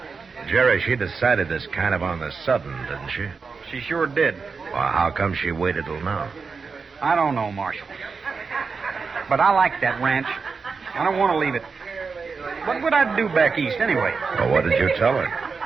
Jerry, she decided this kind of on the sudden, didn't she? She sure did. Well, how come she waited till now? I don't know, Marshal. But I like that ranch. I don't want to leave it. What would I do back east, anyway? Well, what did you tell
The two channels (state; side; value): quieter; left; 5.0 dB